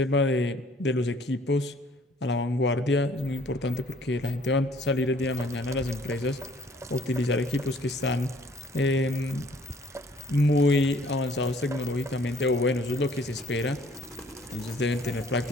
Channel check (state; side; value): normal; both; correlation 0.58